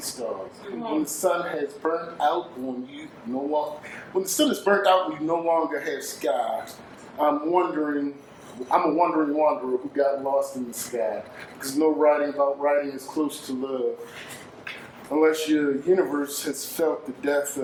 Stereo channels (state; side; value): identical; both; correlation 1.00